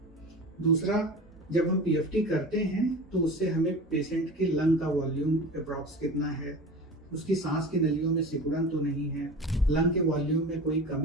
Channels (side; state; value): both; normal; correlation 0.34